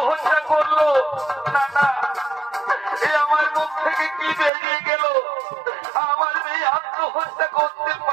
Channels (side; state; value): left; drops out; at 4.5 s